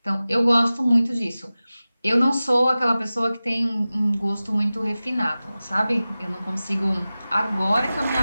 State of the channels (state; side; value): inverted; both; correlation -0.96